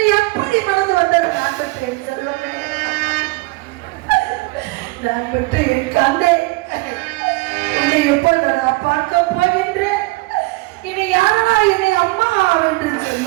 எப்படி மனது வந்தது? நான் பெற்றேன் செல்வமே, நான் பெற்று என் கண்ணை உன்னை எப்பொழுது நான் பார்க்க போகின்றேன்? இனி யாரா என்னை அம்மா என்று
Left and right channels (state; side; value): quieter; left; 23.8 dB